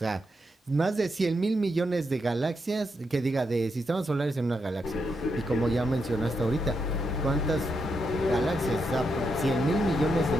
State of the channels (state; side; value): normal; both; correlation 0.82